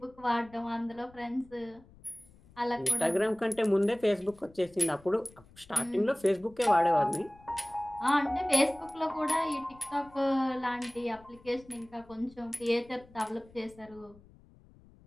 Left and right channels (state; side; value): noise; left; rumble, 25 dB below the sound